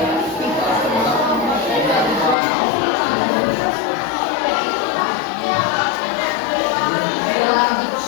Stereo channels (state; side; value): drops out; right; at 2.4 s